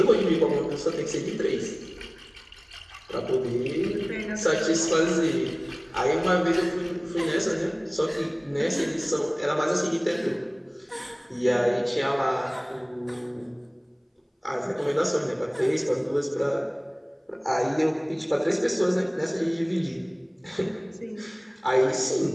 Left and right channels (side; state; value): both; identical; correlation 1.00